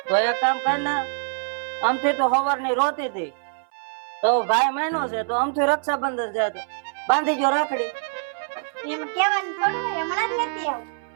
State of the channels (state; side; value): silent; left; 58 dB below the other